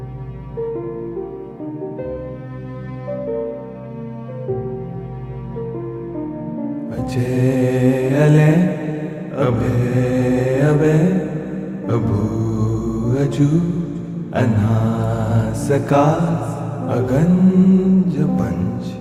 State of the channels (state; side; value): identical; both; correlation 1.00